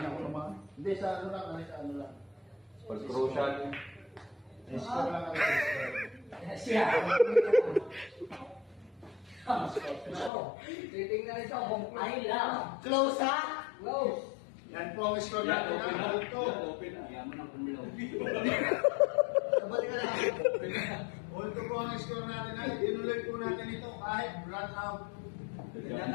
ko naman. Hindi, sa ano lang. Sa ano lang. Pag-crucial. Score lang. Titingnan ito kung ay lang. Close ha? Close. Yan po ang score natin. Open na. Ito. Open na. Yaman ang kumulaw. Sabali ka lang. Ito po ang score natin. Tinuloy po natin ito kahit run out.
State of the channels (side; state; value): right; drops out; at 10.3 s